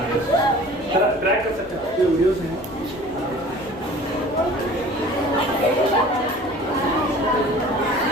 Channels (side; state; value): both; normal; correlation 0.45